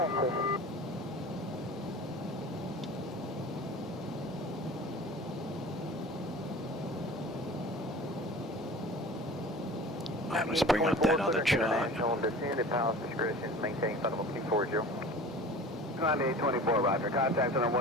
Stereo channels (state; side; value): normal; both; correlation 0.40